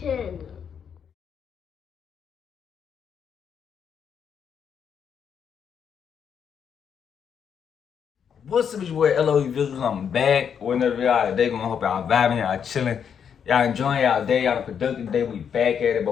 channel. What's up, it's your boy LOE Visuals. I'm back. Whenever y'all today, hope y'all vibing, y'all chilling, y'all enjoying y'all day, y'all a productive day. We back at it.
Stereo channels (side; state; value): right; quieter; 7.6 dB